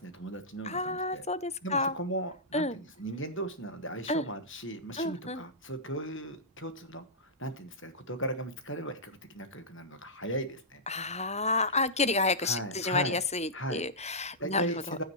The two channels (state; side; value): normal; both; correlation -0.13